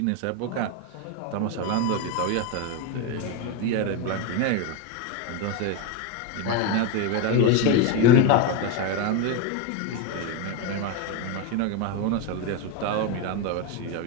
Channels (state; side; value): different; both; correlation 0.03